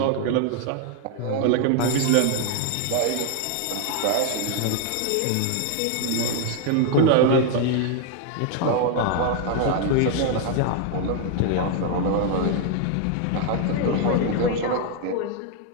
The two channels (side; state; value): both; different; correlation 0.00